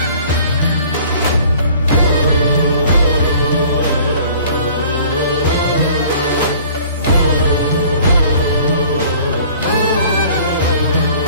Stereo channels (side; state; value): both; inverted; correlation -0.51